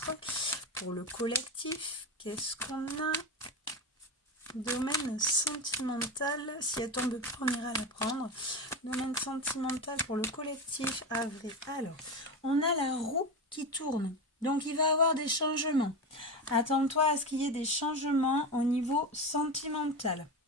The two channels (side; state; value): both; normal; correlation 0.19